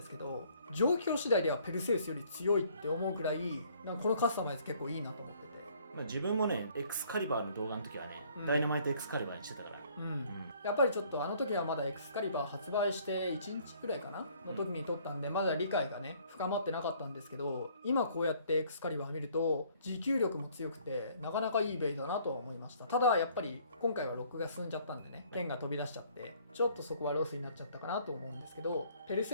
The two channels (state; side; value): inverted; both; correlation -0.60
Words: すけど、状況次第ではペルセウスより強いって思うくらい、なんかこのカスタマイズ結構いいなと思ってて、まあ、自分もねエクスカリバーの動画の時はね、うんダイナマイトエクスカリバーにしてたから、やっぱりちょっとあの時はまだエクスカリバー発売して1日くらいかなの時に撮ったんで、まだ理解がね深まってなかったんですけど、今こうやってエクスカリバー見ると持久力も強くてなかなかいいベイだなとは思いました。ただやっぱり今回はロックが進んじゃったんでね、剣が飛び出しちゃってちょっとそこはロスになっちゃったかなと思うんですけど、ペル